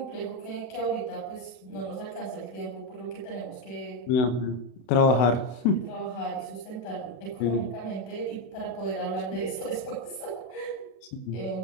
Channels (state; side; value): late; right; 32 ms